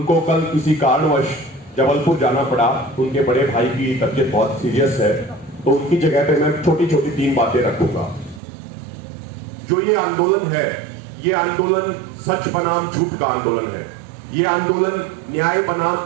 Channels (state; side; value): drops out; left; at 8.4 s